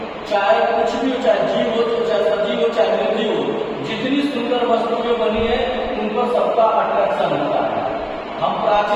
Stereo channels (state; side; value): identical; both; correlation 1.00